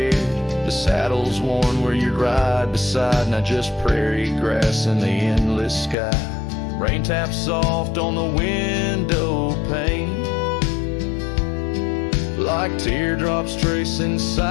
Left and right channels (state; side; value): drops out; right; at 6.0 s